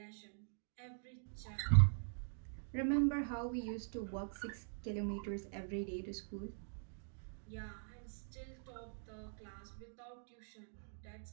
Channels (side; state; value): left; silent; digital silence